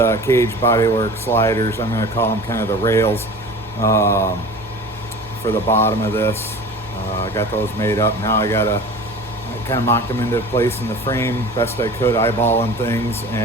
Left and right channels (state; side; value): normal; both; correlation 0.39